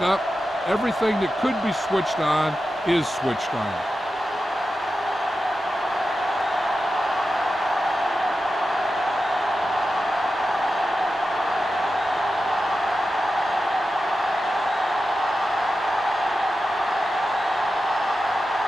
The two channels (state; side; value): normal; both; correlation 0.91